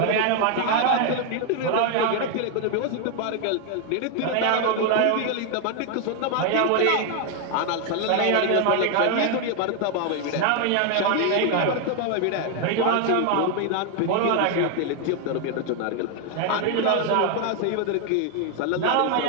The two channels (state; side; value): different; both; correlation 0.01